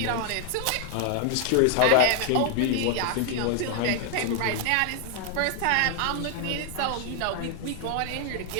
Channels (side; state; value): both; different; correlation 0.00